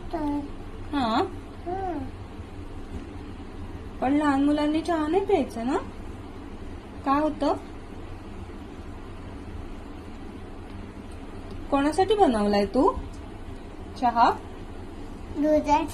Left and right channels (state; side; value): identical; both; correlation 1.00